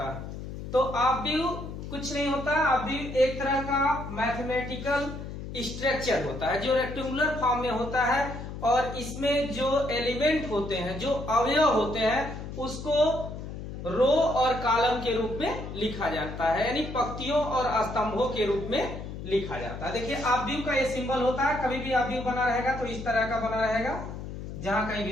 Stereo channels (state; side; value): noise; left; hum, 9 dB below the sound